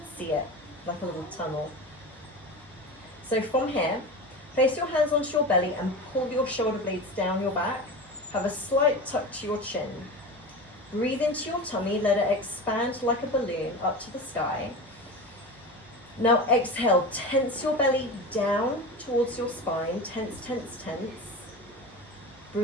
see it like a little tunnel. So from here, place your hands onto your belly and pull your shoulder blades down your back. Have a slight tuck to your chin. Breathe into your tummy, let it expand like a balloon up to the sky. Now exhale, tense your belly down towards your spine, tense, tense, tense.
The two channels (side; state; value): right; noise; hum, 27 dB below the sound